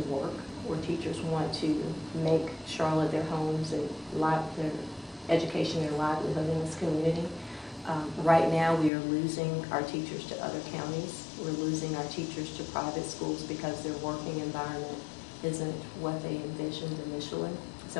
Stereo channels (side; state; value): right; drops out; at 8.9 s